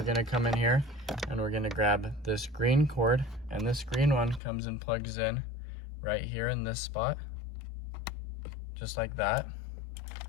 gonna come in here and we're gonna grab this green cord, and this green one comes and plugs in right here in this spot, just like that.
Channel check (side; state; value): right; drops out; at 4.4 s